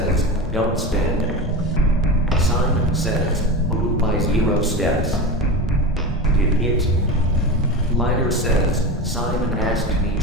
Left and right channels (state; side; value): normal; both; correlation 0.24